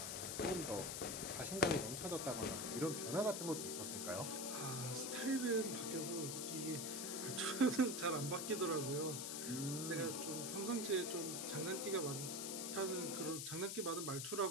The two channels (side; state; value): left; noise; hiss, 3 dB below the sound